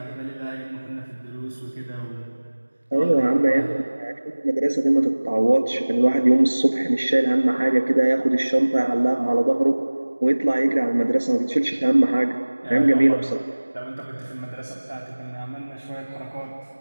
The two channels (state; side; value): inverted; both; correlation -1.00